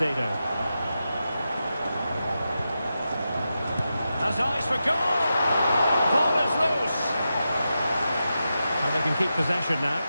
Has eyes for goal. Ball is loose. And they can keep possession now.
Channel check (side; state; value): both; inverted; correlation -0.89